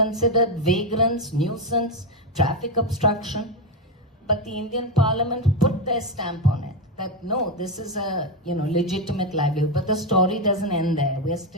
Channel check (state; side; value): normal; both; correlation 0.09